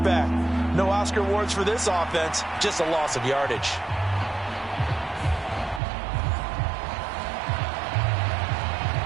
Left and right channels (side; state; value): left; drops out; at 5.8 s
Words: No Oscar awards for this offense, just a loss of yardage.